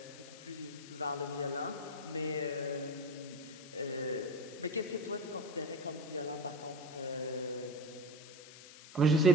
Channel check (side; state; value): left; noise; hiss, 17 dB below the sound